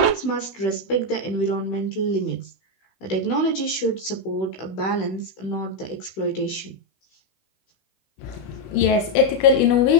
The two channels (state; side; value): late; right; 16 ms